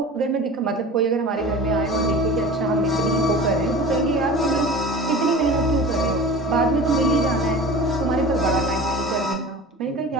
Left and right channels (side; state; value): both; normal; correlation 0.37